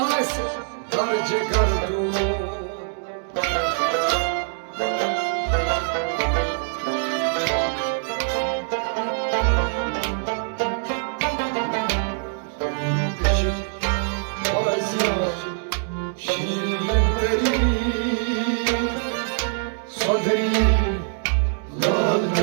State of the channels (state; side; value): silent; left; 63 dB below the other